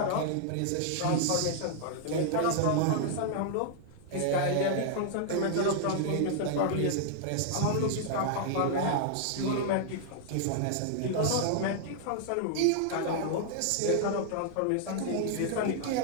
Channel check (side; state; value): both; different; correlation -0.01